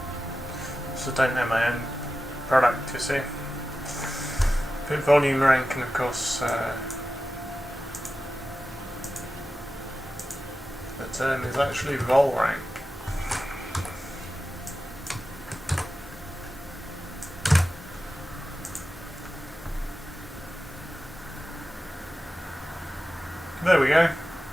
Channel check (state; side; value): normal; both; correlation 0.93